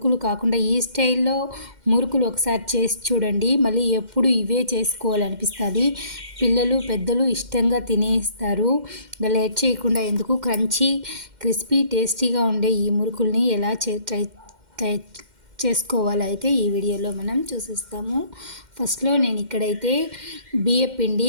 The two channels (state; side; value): late; left; 2.1 ms